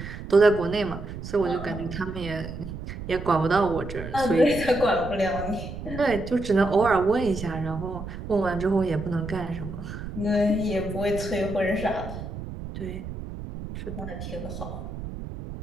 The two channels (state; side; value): noise; right; rumble, 9 dB below the sound